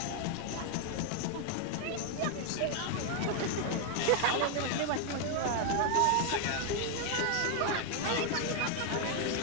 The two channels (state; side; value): different; both; correlation 0.00